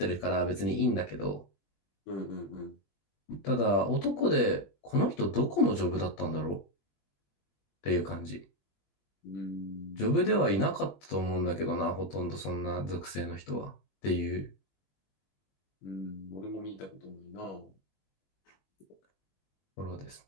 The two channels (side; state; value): right; late; 20 ms